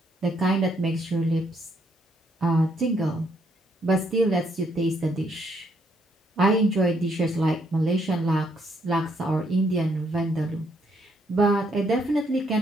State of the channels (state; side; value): normal; both; correlation 0.72